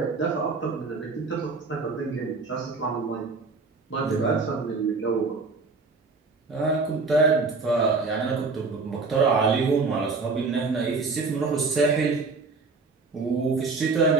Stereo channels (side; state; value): left; quieter; 4.2 dB